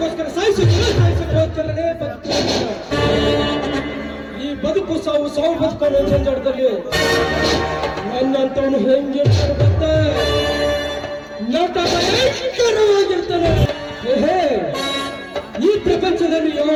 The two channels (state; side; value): identical; both; correlation 1.00